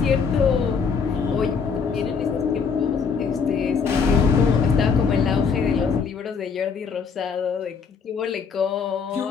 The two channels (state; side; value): quieter; right; 5.8 dB